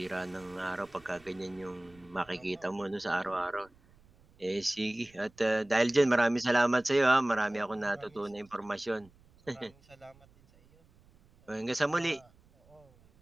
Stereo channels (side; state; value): right; noise; rumble, 29 dB below the sound